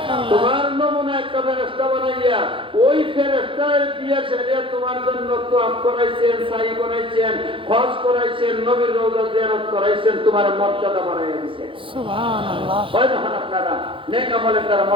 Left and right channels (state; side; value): late; left; 0.25 ms